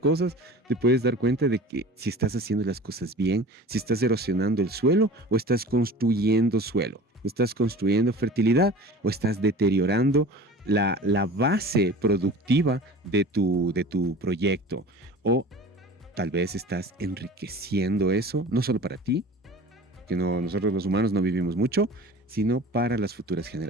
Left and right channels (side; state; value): both; normal; correlation 0.40